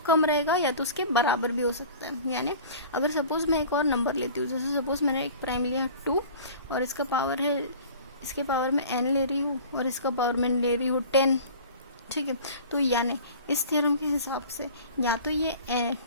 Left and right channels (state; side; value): inverted; both; correlation -0.42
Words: रहेगा या तो उसके बराबर भी हो सकता है। यानी अगर सपोज मैं एक और नंबर लेती हूँ, जैसे सपोज मैंने एक प्राइम लिया 2 और इसका पावर है, इसके पावर में n ले रही हूँ और इसका पावर में ले रही हूँ 10, ठीक है। तो यानी इस थ्योरम के हिसाब से या तो ये